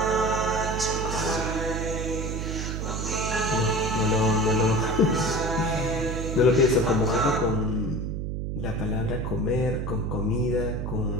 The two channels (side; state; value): right; noise; hum, 3 dB below the sound